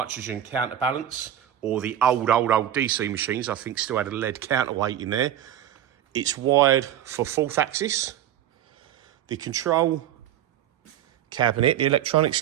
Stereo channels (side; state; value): left; quieter; 11.1 dB